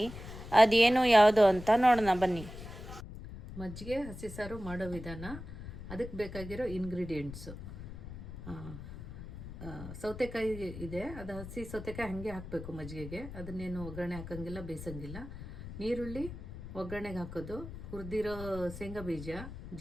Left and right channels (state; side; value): noise; left; rumble, 11 dB below the sound